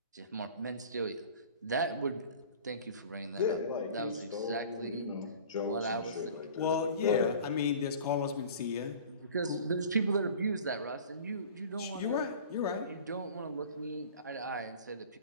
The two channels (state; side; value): inverted; both; correlation -0.43